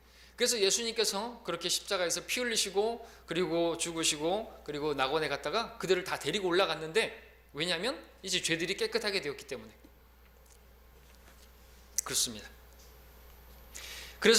그래서 예수님께서 그렇게 십자가에서 피 흘리시고 그리고 죽으시고 그리고 낙원에 갔다가 그들을 다 데리고 올라갔는데, 왜냐하면 이제 죄들이 깨끗하게 되었기 때문에 그렇습니다.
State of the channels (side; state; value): both; identical; correlation 1.00